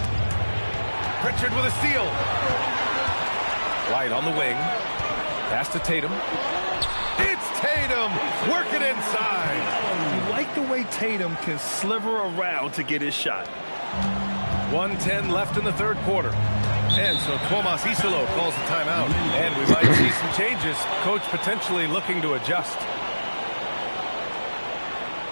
Pritchard with a steal. White on the wing. Pass to Tatum. It's Tatum working inside. You like the way Tatum can sliver around to get his shot. 1:10 left in the third quarter. And so Tomas Isolo calls the timeout. And we might see some changes. Coach potentially looking to adjust.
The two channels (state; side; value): inverted; both; correlation -1.00